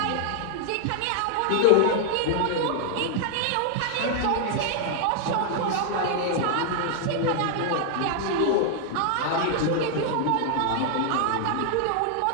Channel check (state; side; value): different; both; correlation -0.01